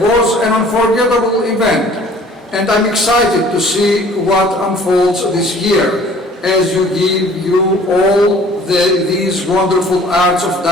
was an unforgettable event, and I'm excited to see what unfolds this year as you give all these wonderful arts of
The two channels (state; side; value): normal; both; correlation 0.52